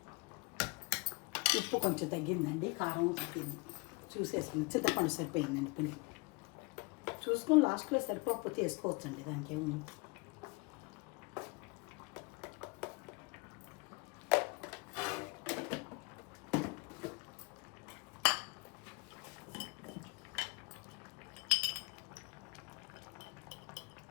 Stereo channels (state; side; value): quieter; right; 28.3 dB